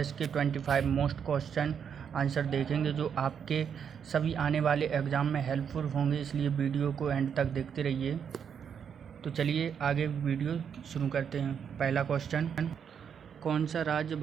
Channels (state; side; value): quieter; left; 7.5 dB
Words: के 25 मोस्ट क्वेश्चन आंसर देखेंगे जो आपके सभी आने वाले एग्ज़ाम में हेल्पफुल होंगे, इसलिए वीडियो को एंड तक देखते रहिए। तो चलिए आगे वीडियो शुरू करते हैं। पहला क्वेश्चन, कौन सा राज्य